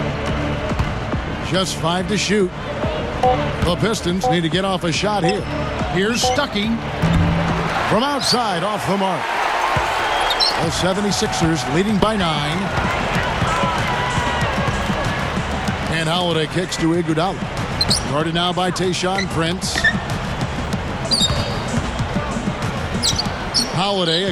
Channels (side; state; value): both; identical; correlation 1.00